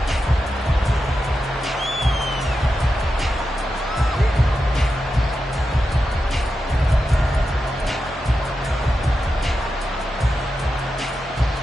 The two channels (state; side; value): normal; both; correlation 0.89